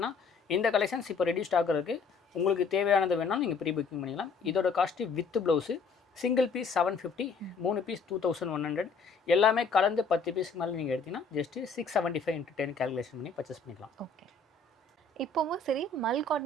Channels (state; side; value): quieter; right; 4.5 dB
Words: இந்த கலெக்ஷன்ஸ் இப்போ ரெடி ஸ்டாக் இருக்குது. உங்களுக்கு தேவையானது வேணாலும் நீங்கள் ப்ரீ புக்கிங் பண்ணிக்கலாம். இதோட cost with blouse single piece 750, 3 பீஸ் 2100, எல்லாமே கலந்து 10 பீஸ்க்கு மேலே நீங்கள் எடுத்தீங்கன்னா ஜஸ்ட்டு 675 × 10 கால்குலேஷன் பண்ணி பர்ச்சேஸ் பண்ணிக்கலாம். ஓகே. இப்போவும் சரி, மல்